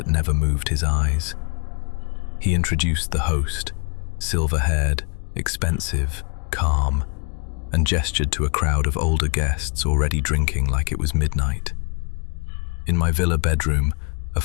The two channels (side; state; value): right; quieter; 35.8 dB